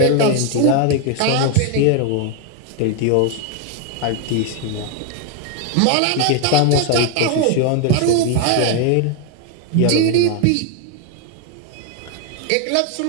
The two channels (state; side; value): different; both; correlation 0.01